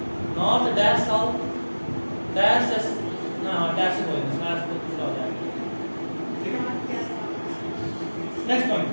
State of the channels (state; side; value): inverted; both; correlation -1.00